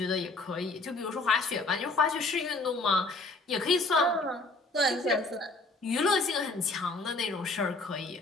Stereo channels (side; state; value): right; quieter; 3.2 dB